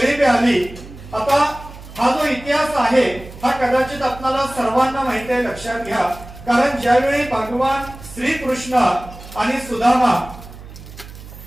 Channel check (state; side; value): noise; right; hum, 16 dB below the sound